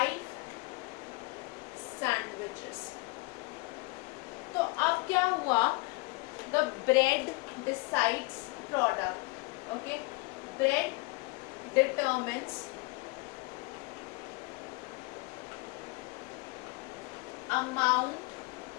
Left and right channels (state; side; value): quieter; right; 26.0 dB